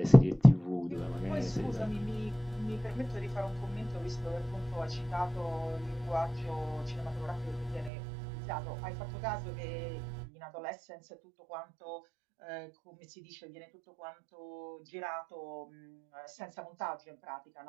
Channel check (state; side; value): drops out; left; at 7.9 s